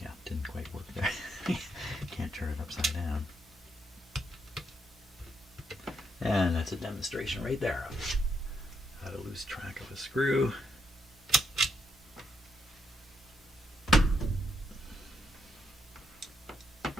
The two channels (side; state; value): both; normal; correlation 0.78